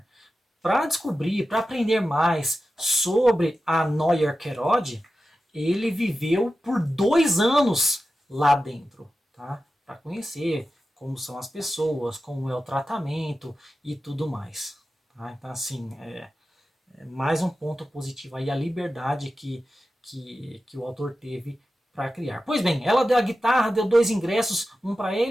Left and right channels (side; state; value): both; normal; correlation 0.92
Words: Para descobrir, para aprender mais sobre a Noyer Kerod, ele viveu por 2 anos lá dentro, tá? Para conhecer como são as pessoas, como é o tratamento e tudo mais. Tá? Então, assim, mais um ponto positivo aí, a liberdade que o autor teve para criar. Pois bem, ela deu a guitarra, deu 2 ingressos, um para